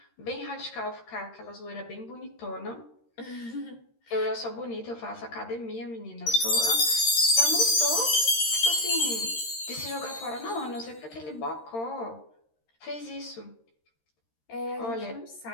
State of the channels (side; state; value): right; late; 13 ms